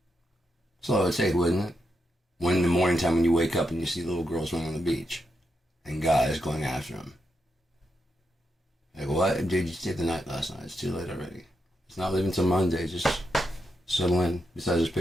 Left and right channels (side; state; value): both; normal; correlation 0.84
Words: That's all it would take, wouldn't it? When in the morning time when you wake up and you see little girls running on the beach, and guys going after them. Like, what? Dude, you stayed the night last night. It's too late already. It's not leaving till Monday. Just settle in. Besides, there's